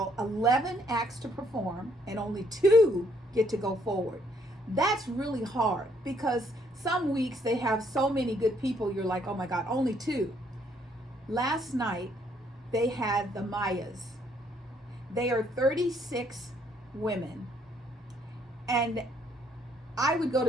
11 acts to perform and only 2 get to go forward. That's really hard because some weeks they have so many good people. You're like, oh my God, only 2. Last night they had the Mayas. They are 36 women. And I would go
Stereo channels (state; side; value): normal; both; correlation 0.68